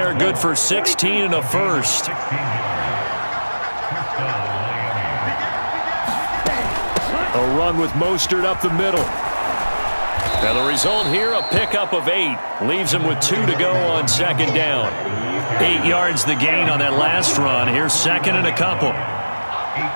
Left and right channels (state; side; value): inverted; both; correlation -1.00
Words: good for 16 and a first. A run with Mostert up the middle. Now the result here, a pickup of 8. Leaves him with 2 to go on 2nd down. 8 yards the gain on that last run. Here's 2nd and a couple.